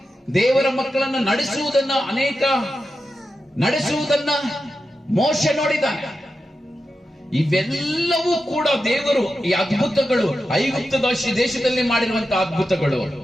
ದೇವರ ಮಕ್ಕಳನ್ನು ನಡೆಸುವುದನ್ನ ಮೋಶೆ ನೋಡಿದ್ದಾನೆ. ಇವೆಲ್ಲವೂ ಕೂಡ ದೇವರು, ಈ ಅದ್ಭುತಗಳು, ಐಗುಪ್ತ ದೇಶದಲ್ಲಿ ಮಾಡಿರುವಂತಹ ಅದ್ಭುತಗಳು,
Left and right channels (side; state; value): both; normal; correlation 0.90